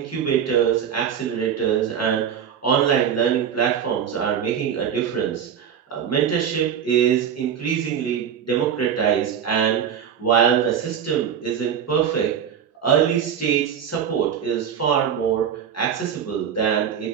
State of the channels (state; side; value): quieter; left; 8.3 dB